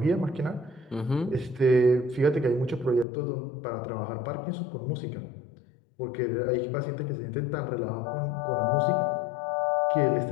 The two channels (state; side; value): drops out; right; at 3.1 s